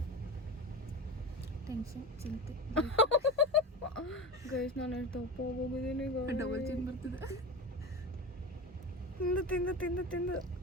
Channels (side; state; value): both; normal; correlation 0.25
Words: ಟೆನ್ಷನ್ ಚಿಂತೆ. ಗೈಸ್ ನಾನು ಎಷ್ಟು ದಪ್ಪ ಹೋಗಿದ್ದೀನಿ. ಡಬಲ್ ಚಿನ್ ಬರ್ತಿದೆ ತಿಂದು